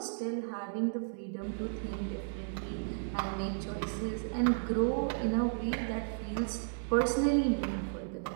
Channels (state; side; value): silent; left; digital silence